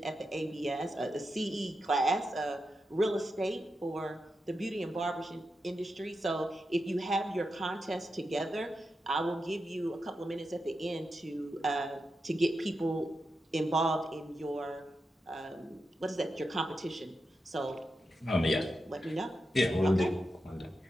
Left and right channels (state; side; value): normal; both; correlation 0.88